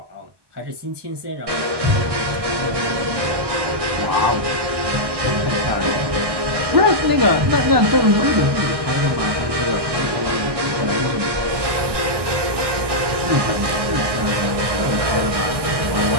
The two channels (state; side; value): late; left; 1.2 ms